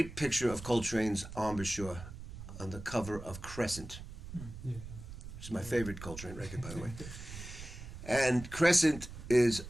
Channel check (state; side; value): noise; right; rumble, 12 dB below the sound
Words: picture of Coltrane's embouchure on the cover of Crescent. It's my favorite Coltrane record, by the way. And Crescent is